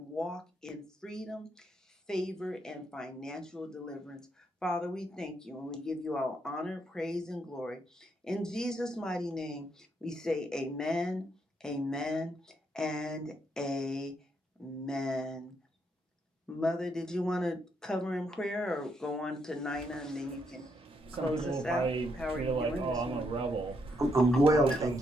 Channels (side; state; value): both; normal; correlation 0.77